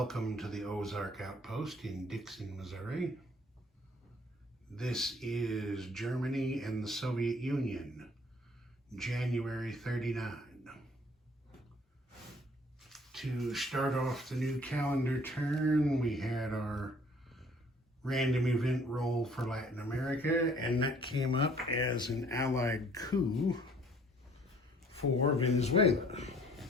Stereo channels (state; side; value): normal; both; correlation 0.58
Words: to the Ozark Outpost in Dixon, Missouri. This is Germany and the Soviet Union, January 39. To start off the new calendar turn, we had our random event roll for Latin America, and that came up as an Allied coup for Venezuela.